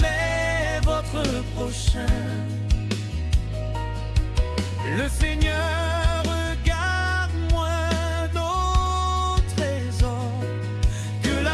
votre prochain. Le Seigneur regarde moins nos trésors que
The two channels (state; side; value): identical; both; correlation 1.00